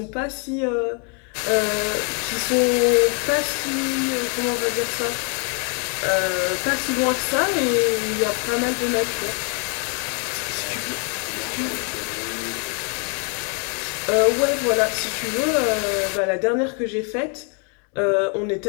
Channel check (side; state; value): right; quieter; 38.6 dB